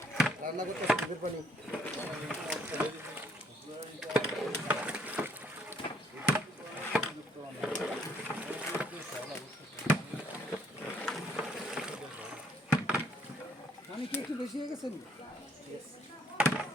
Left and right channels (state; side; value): normal; both; correlation 0.65